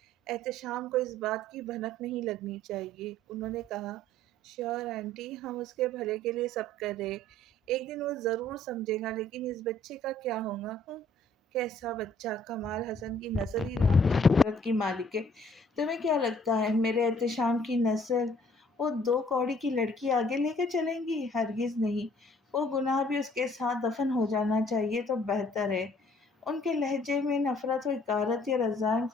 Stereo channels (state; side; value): normal; both; correlation 0.59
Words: احتشام کو اس بات کی بھنک نہیں لگنی چاہیے. انہوں نے کہا شیور آنٹی، ہم اس کے بھلے کے لیے سب کر رہے. ایک دن وہ ضرور سمجھے گا. لیکن اس بچے کا کیا ہوگا؟ کیسا بچہ؟ کمال حسن کی نسل ہی قدرت کی مالک ہے. تمہیں کیا لگتا ہے میرے احتشام کی نسل وہ 2 کوڑی کی لڑکی آگے لے کے چلیں گی؟ ہرگز نہیں. وہ گناہ بھی اس کے ساتھ دفن ہو جانا چاہیے تو بہتر ہے. ان کے لہجے میں نفرت و حقارت یا رضائم